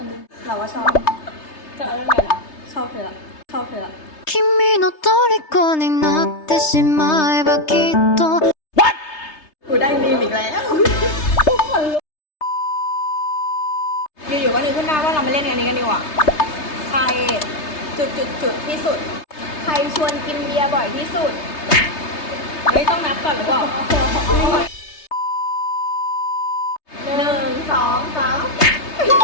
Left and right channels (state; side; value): late; right; 3.3 ms